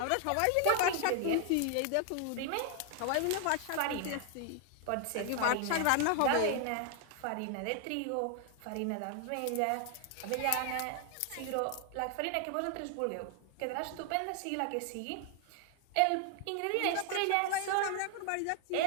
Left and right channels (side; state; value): both; different; correlation 0.00